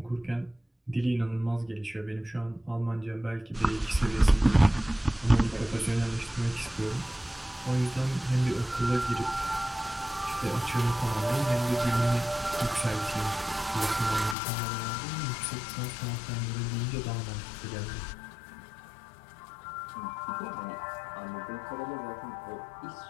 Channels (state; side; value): drops out; right; at 14.4 s